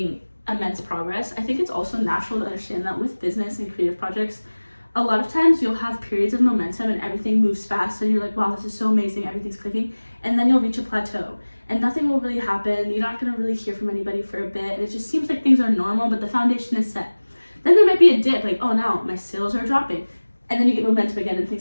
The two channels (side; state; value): both; inverted; correlation -1.00